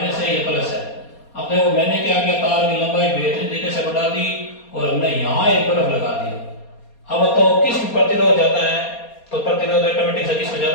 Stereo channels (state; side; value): late; right; 4.3 ms